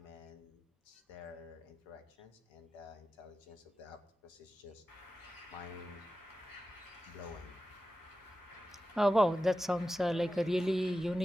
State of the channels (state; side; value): normal; both; correlation 0.93